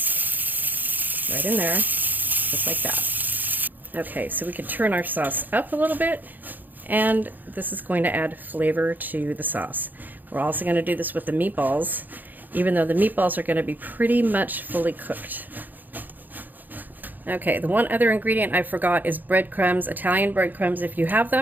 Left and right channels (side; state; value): left; late; 0.086 ms